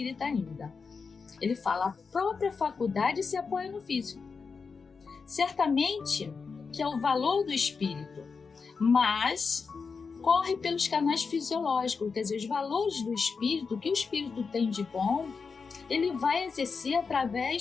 ainda. Ele fala: a própria faculdade se apoia no físico. Certamente que é o valor do espírito, mas corre pelos canais fisiológicos, quer dizer, os valores do espírito, o que o espírito tem de bom, ele vai exercer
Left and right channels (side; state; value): right; quieter; 5.1 dB